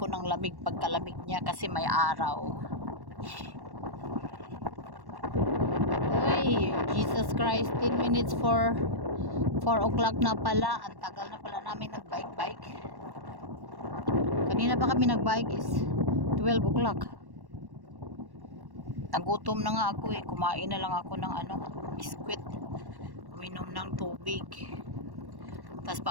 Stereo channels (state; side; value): late; left; 1.1 ms